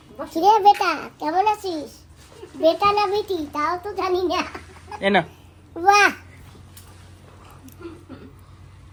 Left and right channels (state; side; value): identical; both; correlation 1.00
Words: কিরে বেটা, কেমন আছিস? বেটা না বেটি তাও তো জানি না। এ না, বাহ,